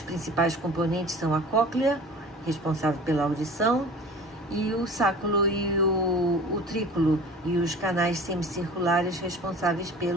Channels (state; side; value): normal; both; correlation 0.41